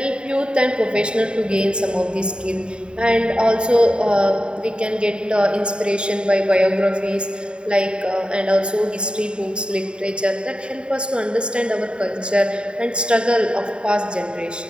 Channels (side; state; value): left; late; 0.051 ms